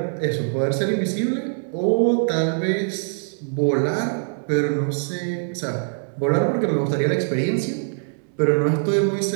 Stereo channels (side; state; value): left; silent; 63 dB below the other